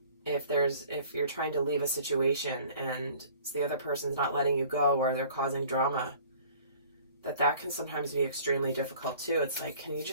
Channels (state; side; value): inverted; both; correlation -0.50